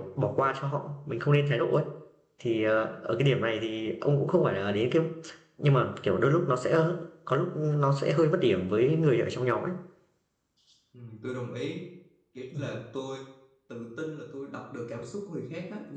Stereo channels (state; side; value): identical; both; correlation 1.00